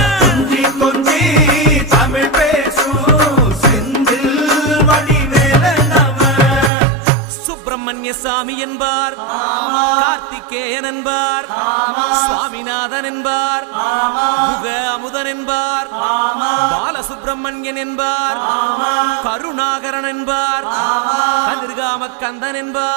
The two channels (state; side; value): drops out; left; at 6.7 s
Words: கொஞ்சி கொஞ்சி தமிழ் பேசும் செந்தில் வடிவேலனவ சுப்பிரமணிய சாமி என்பார், கார்த்திகேயன் என்பார், சுவாமிநாதன் என்பார், முக அமுதன் என்பார், பாலசுப்பிரமணியன் என்பார், கருணாகரன் என்பார், கதிர்காம கந்தன்